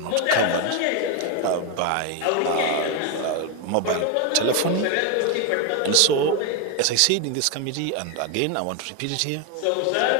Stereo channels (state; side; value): different; both; correlation 0.01